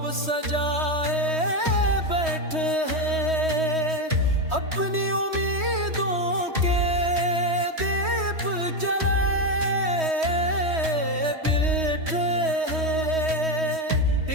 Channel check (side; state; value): left; late; 3.2 ms